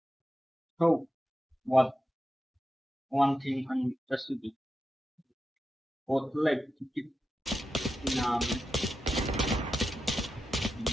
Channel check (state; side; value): normal; both; correlation 0.90